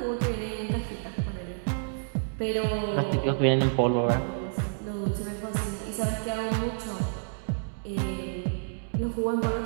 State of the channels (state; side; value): silent; left; digital silence